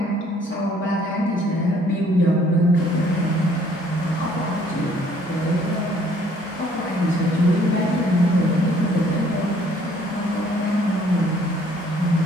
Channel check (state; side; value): normal; both; correlation 0.61